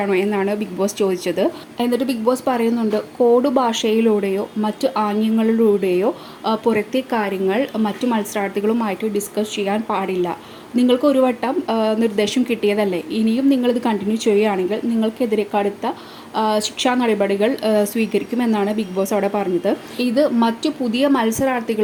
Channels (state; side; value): identical; both; correlation 1.00